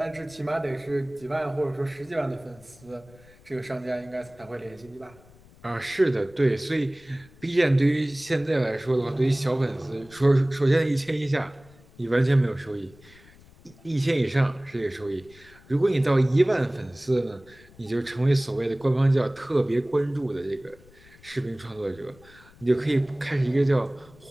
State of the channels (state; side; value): noise; left; rumble, 25 dB below the sound